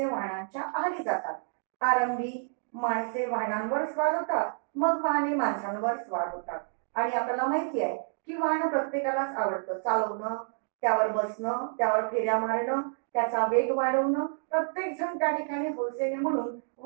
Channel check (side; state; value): left; silent; digital silence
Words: वाहनांच्या आहारी जातात. आरंभी माणसे वाहनांवर स्वार होतात, मग वाहने माणसांवर स्वार होतात आणि आपल्याला माहिती आहे की वाहन प्रत्येकालाच आवडतं. चालवणं, त्यावर बसणं, त्यावर फेऱ्या मारणं, त्याचा वेग वाढवणं प्रत्येक जण त्या ठिकाणी हौसेने म्हणून